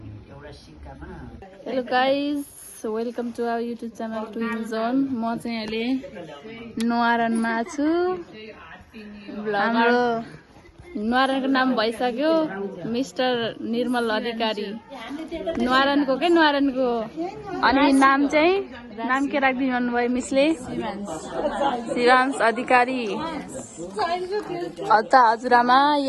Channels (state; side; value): identical; both; correlation 1.00